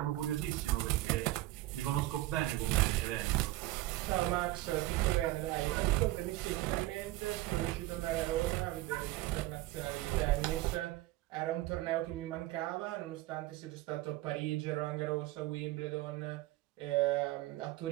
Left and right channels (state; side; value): quieter; left; 17.3 dB